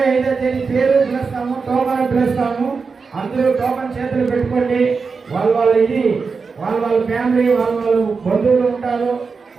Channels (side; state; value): left; quieter; 4.9 dB